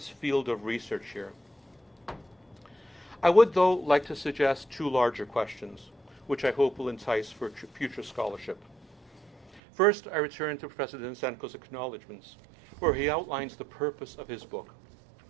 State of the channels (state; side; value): drops out; left; at 9.6 s